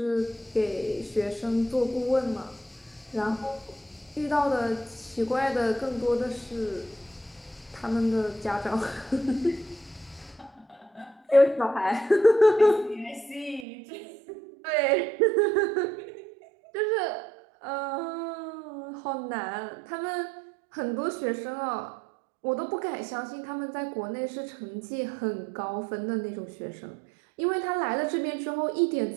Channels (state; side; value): drops out; left; at 13.7 s